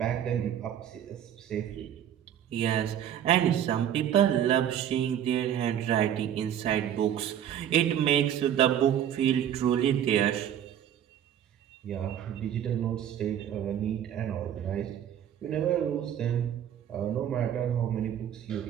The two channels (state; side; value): quieter; left; 10.1 dB